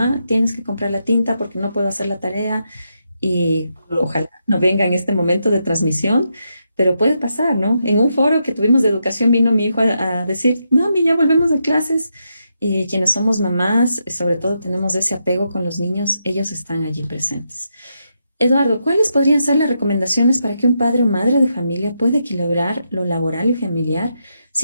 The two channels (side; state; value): both; inverted; correlation -0.83